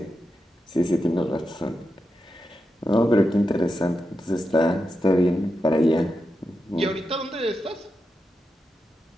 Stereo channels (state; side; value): normal; both; correlation 0.88